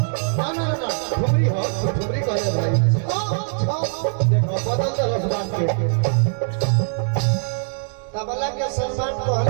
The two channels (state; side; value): silent; left; digital silence